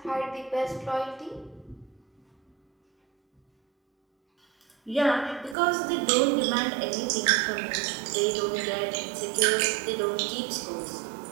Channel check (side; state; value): left; drops out; at 5.6 s